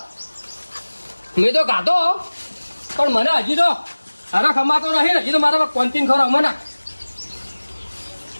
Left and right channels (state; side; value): inverted; both; correlation -1.00